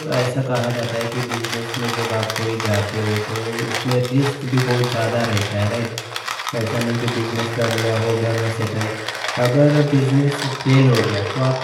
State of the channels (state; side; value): identical; both; correlation 1.00